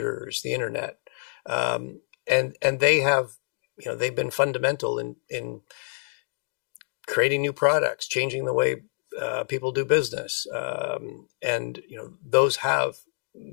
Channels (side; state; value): right; silent; digital silence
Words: the internet, and they have, they've been fundamental in creating new products, changing the way people do business, and those have